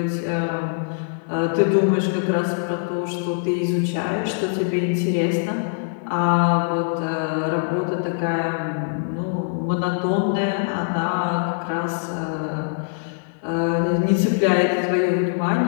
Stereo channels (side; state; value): right; silent; digital silence